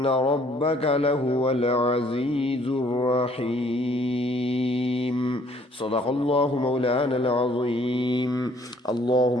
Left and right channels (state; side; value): normal; both; correlation 0.61